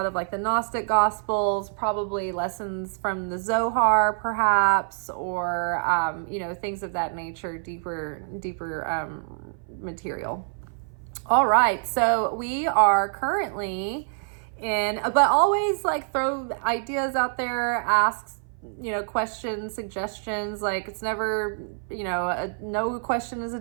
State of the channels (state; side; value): silent; left; 57 dB below the other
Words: of like the Gnostic Gospels, probably lessons from the Zohar perhaps, or things of that nature, deeper material. All right, so we are currently but always like throw ideas out there, ask, questions, suggestions. Like, it's never, no question is a